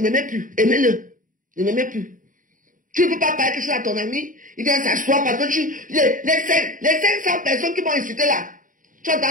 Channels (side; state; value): left; late; 0.39 ms